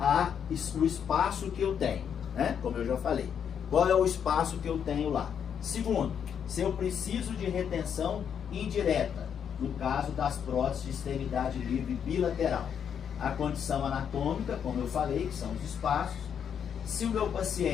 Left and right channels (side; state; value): right; quieter; 8.0 dB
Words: o espaço que eu tenho, né? Como eu já falei. Qual é o espaço que eu tenho lá? Segundo, se eu preciso de retenção indireta, no caso das próteses de extremidade livre bilateral. A condição anatômica, como eu falei, que são os espaços. Se o meu